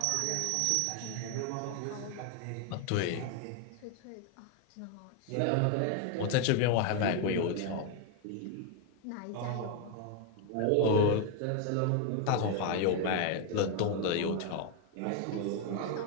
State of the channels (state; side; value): different; both; correlation 0.01